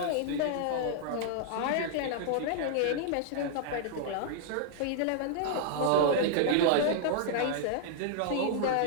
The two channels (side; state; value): both; different; correlation -0.01